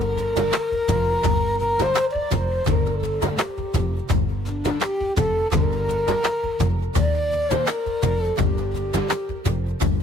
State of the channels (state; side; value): normal; both; correlation 0.67